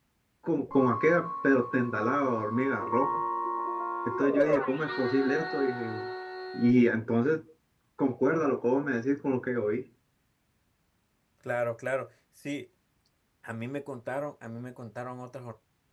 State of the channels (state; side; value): identical; both; correlation 1.00